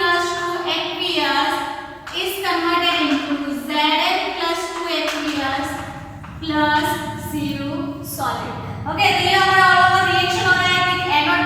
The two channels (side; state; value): both; identical; correlation 1.00